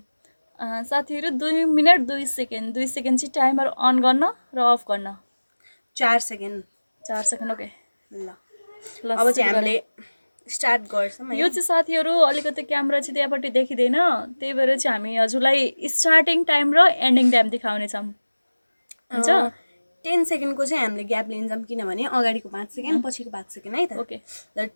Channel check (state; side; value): inverted; both; correlation -1.00